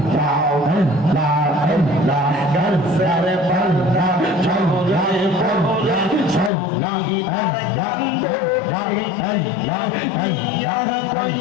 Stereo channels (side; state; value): right; drops out; at 6.5 s